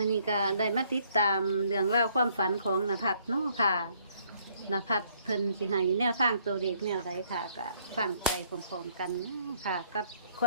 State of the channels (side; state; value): both; inverted; correlation -0.66